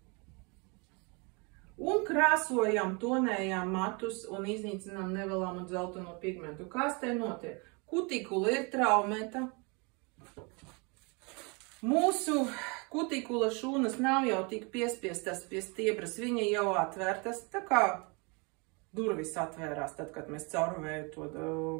un krāsojam, tonējam matus un iznīcinām nevēlamu dzelteno pigmentu. Kas te notiek? Kutikula ir traumēta. Mūsu kutikula šūnas nav jau tik piespiestas pie stiebras, viņa jau atvērtas, tā kā durvis atvērās, tad, kad mēs caurvēju to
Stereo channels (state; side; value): quieter; left; 31.2 dB